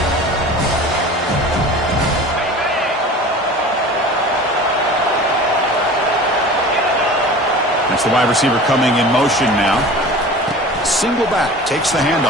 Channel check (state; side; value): normal; both; correlation 0.39